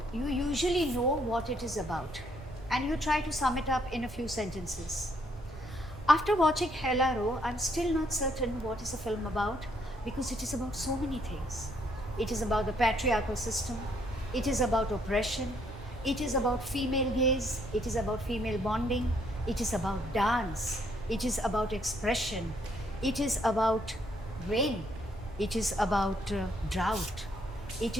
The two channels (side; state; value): both; normal; correlation 0.70